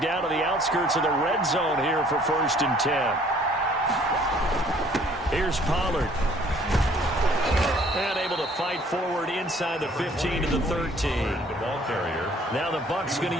down to the outskirts of the red zone here for 1st and 10. Here's Pollard. And able to fight forward inside the 15 to the 13. Now the Bucs going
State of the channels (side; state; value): both; normal; correlation 0.58